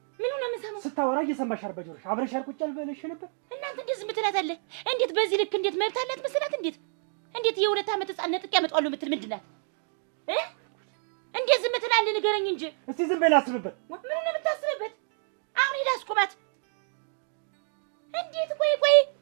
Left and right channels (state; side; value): silent; left; 59 dB below the other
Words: ምኑ ነው የምሰማው? ስታወራ እየሰማሻል በጆሮሽ። አብረሻል ቁጭ ያልበለሽ ነበር። እናንተ እንዴት ዝም ትላታለህ? እንዴት በዚህ ልክ እንዴት መብት አላት መሰላት? እንዴት የ2 አመት ህፃን ነጥቄ አመጣዋለሁ የምትል ምንድን ናት? እንዴት ዝም ትላለህ? ንገረኝ እንጂ። እስቲ ዝም በይ ላስብበት። ምኑ ነው የምታስብበት? አሁን ላስኩማት። እንዴት ቆይ